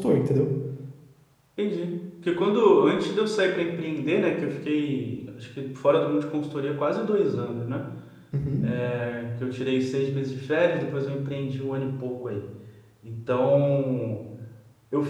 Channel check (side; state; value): both; identical; correlation 1.00